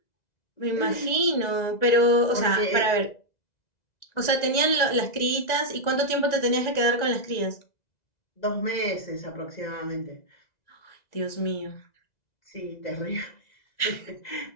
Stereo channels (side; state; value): right; late; 2.0 ms